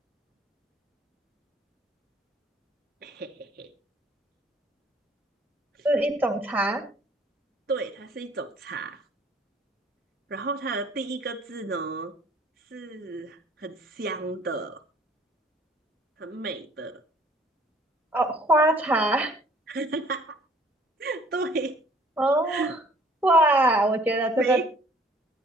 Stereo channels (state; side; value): normal; both; correlation 0.57